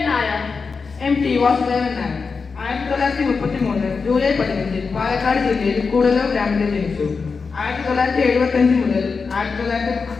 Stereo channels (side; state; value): right; quieter; 4.9 dB